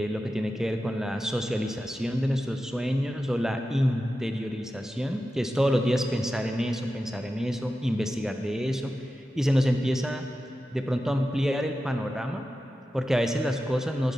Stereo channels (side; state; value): both; normal; correlation 0.92